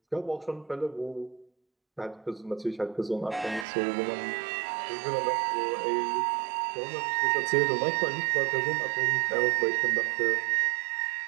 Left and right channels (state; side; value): drops out; left; at 3.7 s